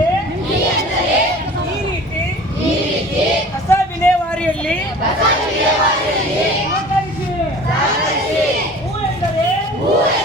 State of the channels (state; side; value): normal; both; correlation 0.43